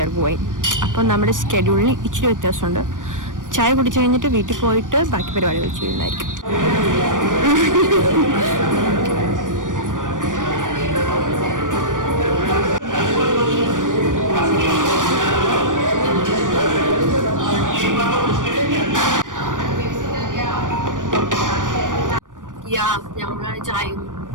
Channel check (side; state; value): left; late; 0.88 ms